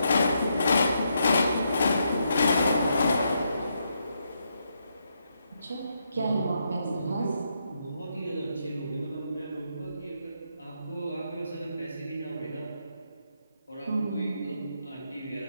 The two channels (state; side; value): inverted; both; correlation -0.80